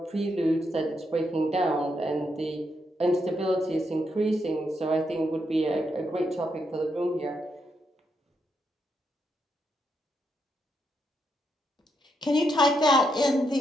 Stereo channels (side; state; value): both; normal; correlation 0.80